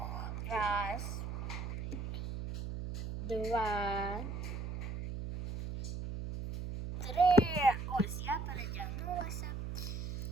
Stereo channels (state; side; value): noise; right; hum, 5 dB below the sound